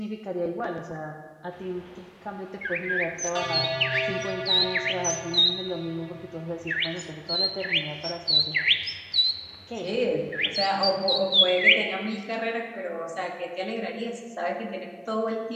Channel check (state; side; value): identical; both; correlation 1.00